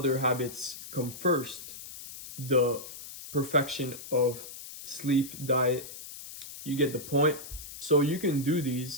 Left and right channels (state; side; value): noise; left; hiss, 13 dB below the sound